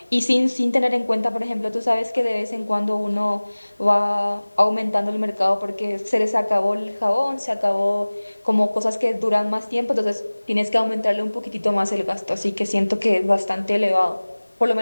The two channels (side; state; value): both; inverted; correlation -1.00